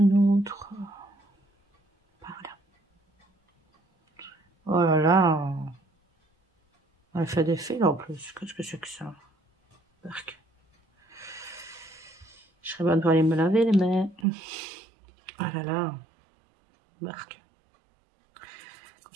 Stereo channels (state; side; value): drops out; left; at 14.2 s